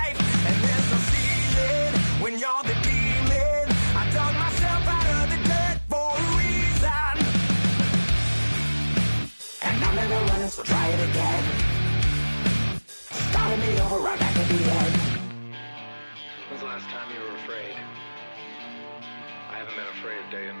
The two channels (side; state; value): both; inverted; correlation -1.00